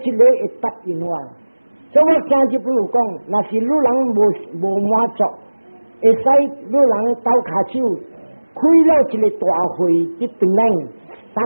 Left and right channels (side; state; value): both; inverted; correlation -1.00